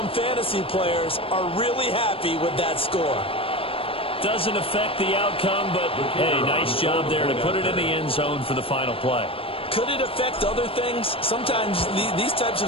fantasy players are really happy with that score. Doesn't affect the outcome, but hey, nice job there to put it in the end zone for the final play. Could it affect other things? Sometimes these types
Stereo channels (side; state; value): right; late; 0.27 ms